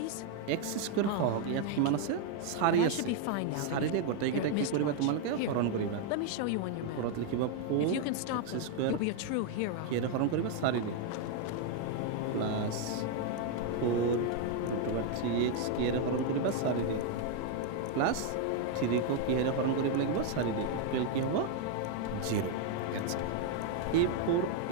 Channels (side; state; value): both; different; correlation 0.00